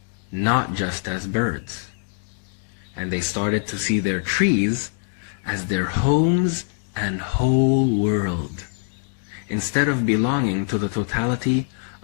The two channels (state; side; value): silent; right; digital silence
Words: not just as birds. And they started to see their trees as their homes and whole world, instead of belonging to the totality